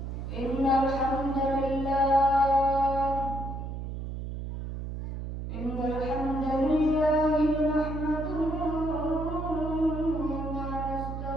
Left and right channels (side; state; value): right; noise; hum, 6 dB below the sound